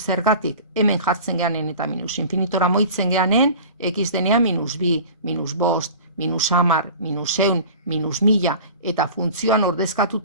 hemen jartzen geanen eta minus infinitora moitzen geanen, x denean minus 2, minus 5, minus 10, minus 100, minus 1000, eta funtzioan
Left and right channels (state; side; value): inverted; both; correlation -0.40